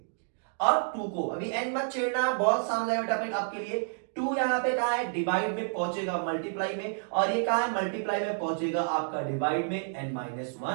और 2 को, अभी n मत छेड़ना, बहुत सामने है बेटा आपके लिए। 2 यहां पे कहां है, डिवाइड में पहुंचेगा मल्टीप्लाई में, और ये कहां है मल्टीप्लाई में पहुंचेगा आपका डिवाइड में n माइनस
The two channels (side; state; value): left; silent; digital silence